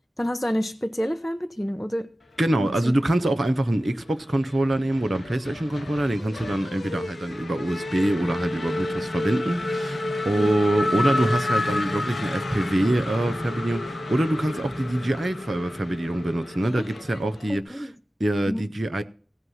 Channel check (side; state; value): both; normal; correlation 0.95